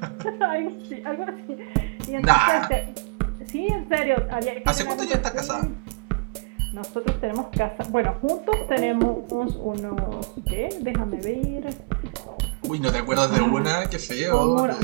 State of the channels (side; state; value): left; quieter; 31.0 dB